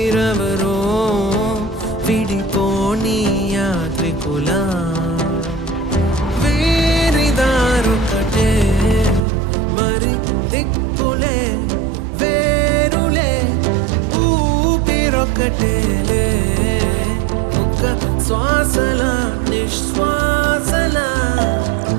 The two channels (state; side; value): drops out; left; at 9.2 s